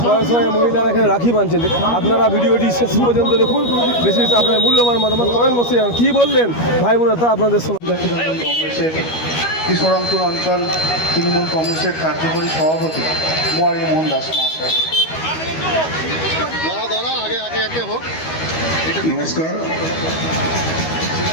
শয়ে মহিলারা এখানে রাখি বাঁধছেন। আপনারা ভিডিওটি শেষ পর্যন্ত দেখুন, বেশি বেশি আপনার মূল্যবান মতামত কমেন্ট বসে যান। কী বললেন ভাই বোনেরা তা আপনাদের শোনা। কংগ্রেসের কৃষ্ণরামপুর অঞ্চল তৃণমূল কংগ্রেসের কার্যকরী সভাপতি মোয়ারি মোহন দাস মহাশয়। নমস্কার।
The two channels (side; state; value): right; late; 13 ms